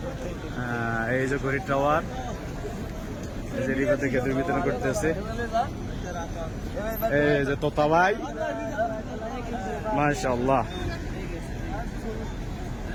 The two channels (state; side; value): identical; both; correlation 1.00